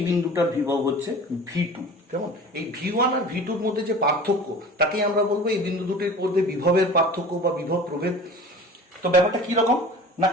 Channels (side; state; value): both; normal; correlation 0.40